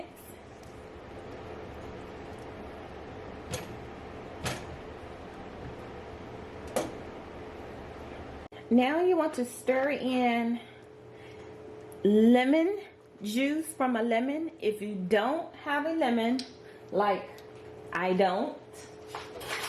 Now you want to stir in lemon juice from a lemon. If you don't have a lemon, like I don't,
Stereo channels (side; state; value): both; identical; correlation 1.00